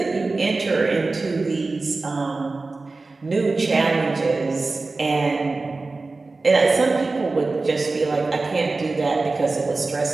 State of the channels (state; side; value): quieter; left; 3.6 dB